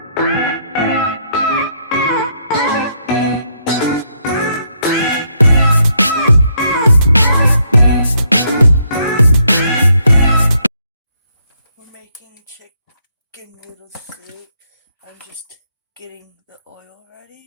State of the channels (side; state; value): both; inverted; correlation -0.73